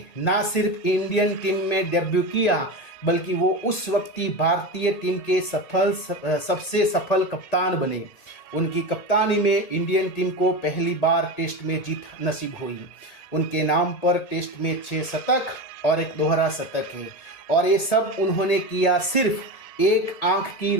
ना सिर्फ इंडियन टीम में डेब्यू किया बल्कि वो उस वक्ती भारतीय टीम के सबसे सफल कप्तान बने। उनकी कप्तानी में इंडियन टीम को पहली बार टेस्ट में जीत नसीब हुई। उनके नाम पर टेस्ट में 6 शतक और एक दोहरा शतक है और ये सब उन्होंने किया सिर्फ एक आंख की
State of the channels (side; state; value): right; late; 1.8 ms